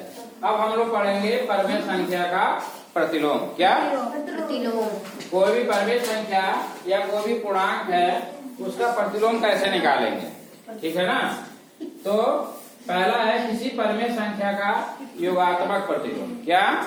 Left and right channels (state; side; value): identical; both; correlation 1.00